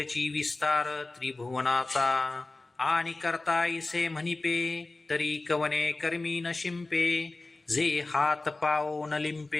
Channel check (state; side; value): quieter; right; 3.2 dB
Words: विस्तार त्रिभुवनाचा. आणि करता इसे म्हणिपे, तरी कवने कर्मी न शिंपे, जे हात पाओ न